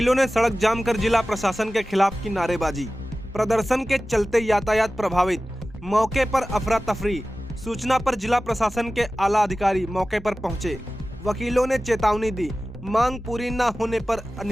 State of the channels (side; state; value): both; normal; correlation 0.96